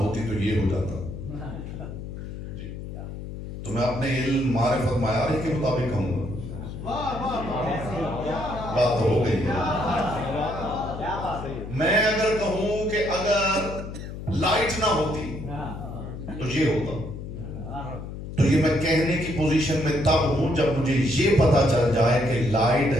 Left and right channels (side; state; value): left; noise; hum, 9 dB below the sound